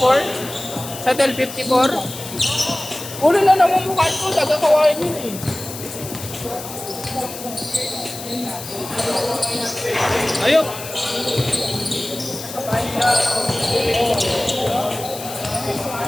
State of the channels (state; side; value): noise; left; hiss, 11 dB below the sound